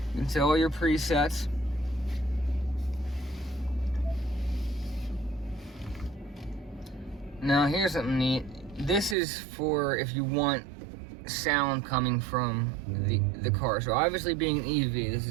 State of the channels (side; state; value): left; drops out; at 9.2 s